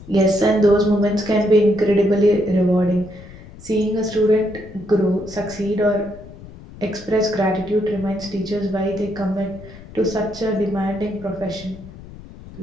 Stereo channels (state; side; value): noise; left; rumble, 17 dB below the sound